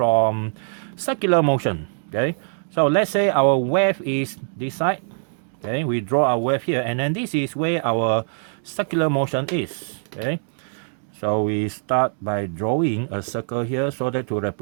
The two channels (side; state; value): left; silent; digital silence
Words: circular motion. Okay, so let's say our wave is this side. Okay, we draw our wave here, and then this is where our circular motion is. Okay, so we start by drawing a circle here so that to